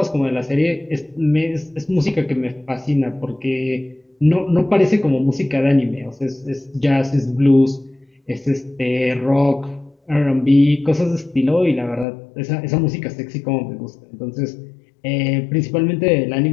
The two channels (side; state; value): right; drops out; at 12.1 s